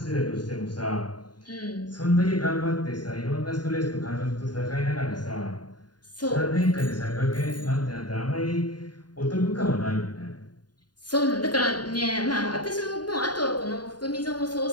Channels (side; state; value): right; late; 0.70 ms